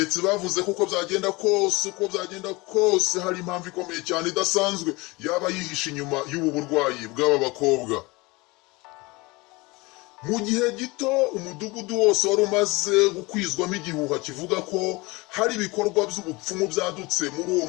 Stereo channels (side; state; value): right; quieter; 23.8 dB